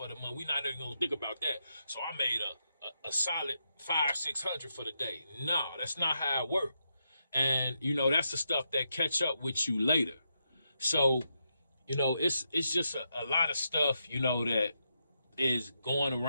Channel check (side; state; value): both; inverted; correlation -0.83